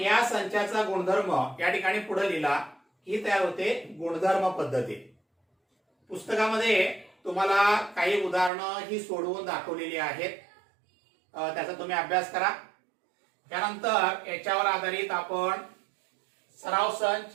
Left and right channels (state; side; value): drops out; left; at 8.5 s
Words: या संचाचा गुणधर्म या ठिकाणी पुढे लिहिला ही तयार होते गुणधर्म पद्धती. पुस्तकामध्ये तुम्हाला काही उदाहरणं ही सोडवून दाखवलेली आहेत, त्याचा तुम्ही अभ्यास करा. त्यानंतर याच्यावर आधारित आपण सराव संच